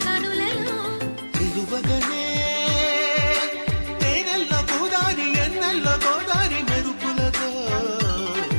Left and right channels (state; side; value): inverted; both; correlation -1.00